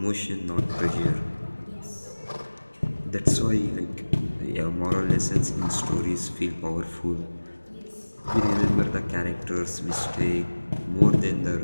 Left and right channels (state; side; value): inverted; both; correlation -1.00